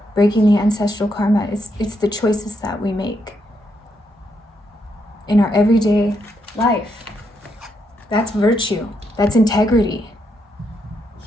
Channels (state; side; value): normal; both; correlation 0.79